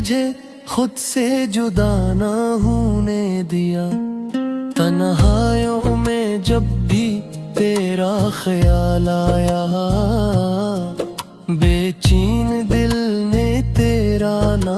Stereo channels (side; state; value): both; identical; correlation 1.00